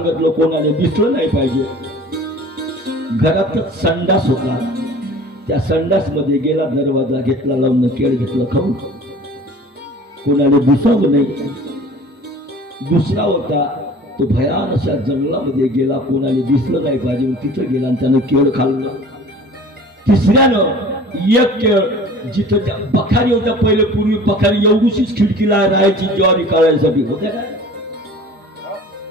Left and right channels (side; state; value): both; normal; correlation 0.44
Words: कोणाला दिसलं नाही पाहिजे. घरातच संडास होता. त्या संडास मध्ये गेला, दरवाजा घेतला लावून, केळ घेतलं खाऊन, कोणाला दिसावं नाही. दुसरा होता तो भयान अशा जंगलामध्ये गेला, कोणाला दिसलं नाही पाहिजे, तिथं गेला आणि त्यानं केळ खाल्लं. तिसऱ्यानं एक केळ, जिथं बखारी होत्या, पहिले पूर्वी बखारी एवढीशीच खिडकीला राहायची ज्वारी काढायसाठी, होत्या काय?